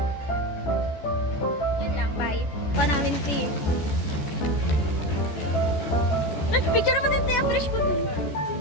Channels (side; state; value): right; late; 14 ms